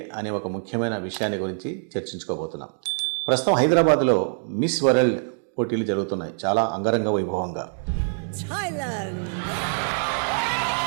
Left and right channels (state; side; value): silent; left; digital silence